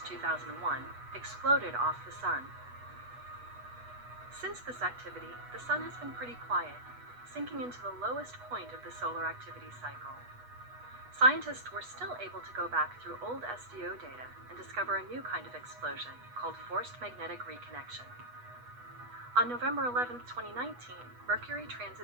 2001, exploded off the sun. Since this activity, the sun has been pretty quiet, sinking into the lowest point of the solar activity cycle. Scientists were still able to go back through old SDO data and discover a new kind of explosion called forced magnetic reconnection. On November 11, 2019, Mercury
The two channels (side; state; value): left; late; 8.2 ms